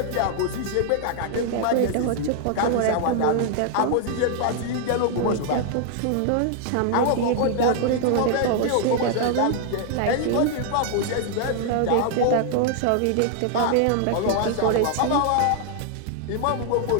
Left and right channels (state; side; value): different; both; correlation 0.00